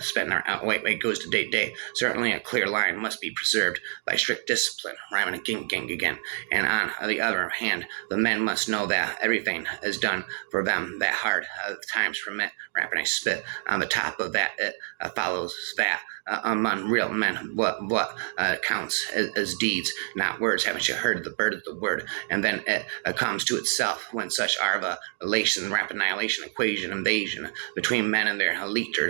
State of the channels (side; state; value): left; silent; digital silence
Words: to day. Certainly a clear line must be preserved by strict discipline, rhyming again. And on the other hand, the men must know that everything is done for them, that hard times permit, rapping I spit on the top of that. It follows that among real men, what counts as deeds, not words. Haven't you heard the bird of the word? And then it comes to itself when such are the relation, rapid annihilation, equation, invasion between men and their